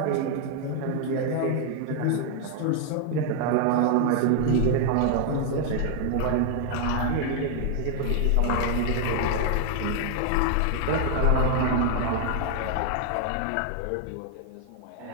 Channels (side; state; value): both; different; correlation 0.00